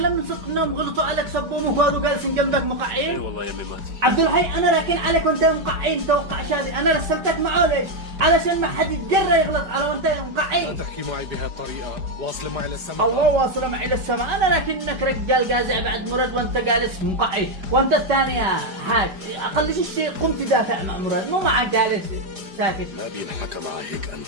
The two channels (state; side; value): late; left; 4.9 ms